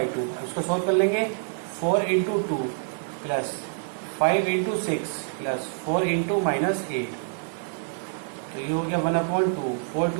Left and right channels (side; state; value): left; silent; digital silence